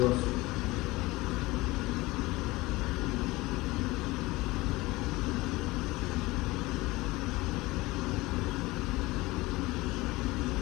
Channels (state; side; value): quieter; right; 20.8 dB